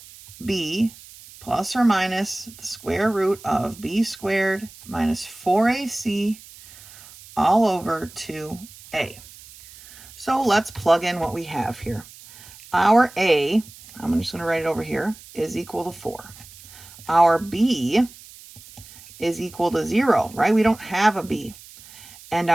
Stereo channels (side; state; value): right; noise; hiss, 20 dB below the sound